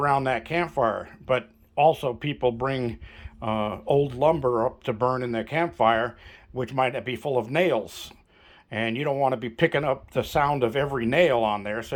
that campfire, but also people bring old lumber up to burn in their campfire, which might be full of nails. And you don't want to be picking up the sound of every nail on there, so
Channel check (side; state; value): both; identical; correlation 1.00